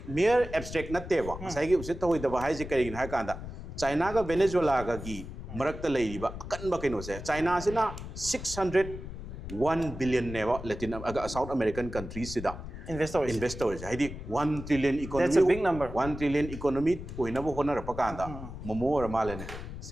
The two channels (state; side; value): noise; left; rumble, 10 dB below the sound